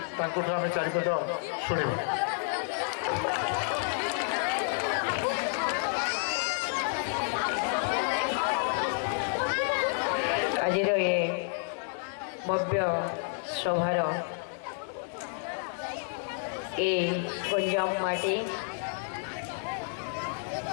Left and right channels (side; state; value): right; silent; 58 dB below the other